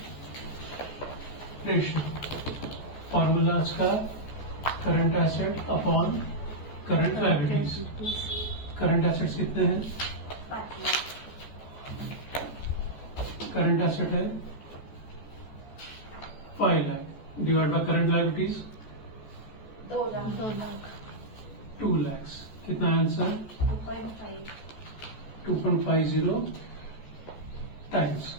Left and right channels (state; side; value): late; right; 14 ms